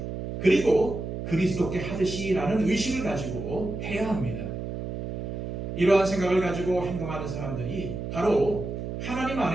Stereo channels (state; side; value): noise; right; hum, 6 dB below the sound